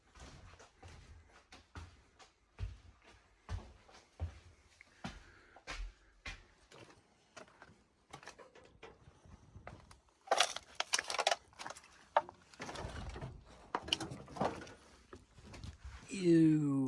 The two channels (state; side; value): identical; both; correlation 1.00